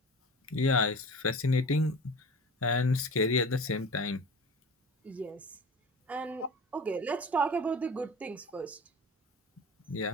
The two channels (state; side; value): normal; both; correlation 0.36